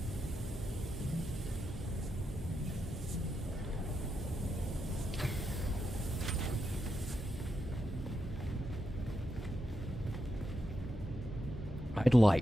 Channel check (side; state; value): both; normal; correlation 0.85